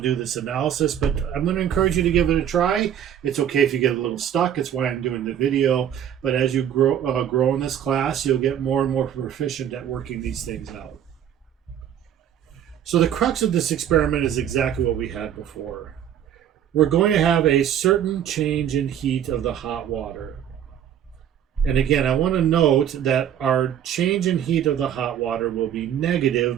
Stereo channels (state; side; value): quieter; left; 9.8 dB